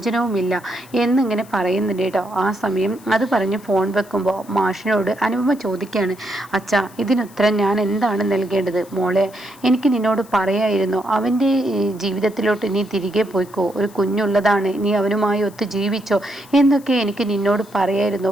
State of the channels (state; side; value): noise; left; hiss, 24 dB below the sound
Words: എന്നിങ്ങനെ പറയുന്നുണ്ട് കേട്ടോ. ആ സമയം അത് പറഞ്ഞ് ഫോൺ വെക്കുമ്പോൾ മാഷിനോട് അനുപമ ചോദിക്കുകയാണ്, അച്ഛാ ഇതിനുത്തരം ഞാൻ എന്താണ് നൽകേണ്ടത്? മോളെ, എനിക്ക് നിന്നോട് പറയായിരുന്നു അവൻ്റെ ജീവിതത്തിലോട്ട് നീ തിരികെ പോയിക്കോ, ഒരു കുഞ്ഞുള്ളതാണ്, നീ അവനുമായി ഒത്ത് ജീവിച്ചോ എന്നൊക്കെ എനിക്ക് നിന്നോട് പറയായിരുന്നു.